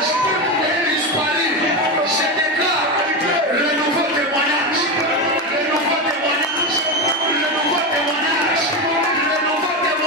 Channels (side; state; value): both; normal; correlation 0.15